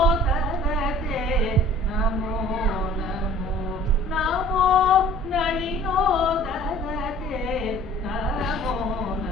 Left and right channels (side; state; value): both; normal; correlation 0.49